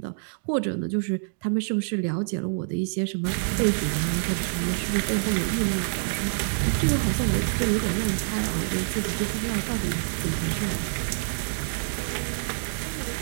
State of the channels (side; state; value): left; silent; digital silence